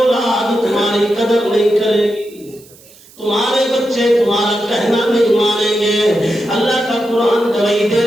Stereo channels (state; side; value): noise; right; hiss, 25 dB below the sound